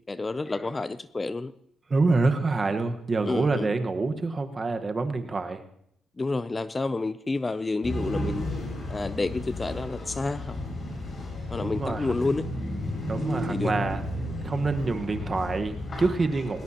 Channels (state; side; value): normal; both; correlation 0.89